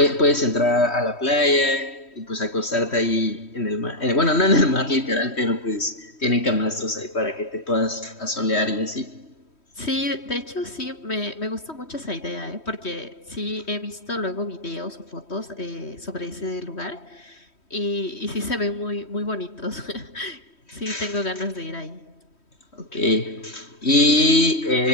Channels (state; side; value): late; right; 3.1 ms